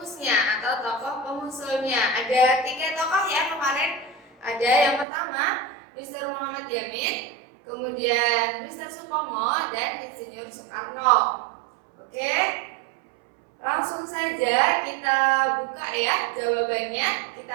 atau tokoh pengusulnya. Ada 3 tokoh ya kemarin. Ada yang pertama Mr. Muhammad Yamin, kemudian Mr. Supomo, dan Insinyur Soekarno. Oke, langsung saja kita buka ya jawabannya.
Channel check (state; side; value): drops out; left; at 5.1 s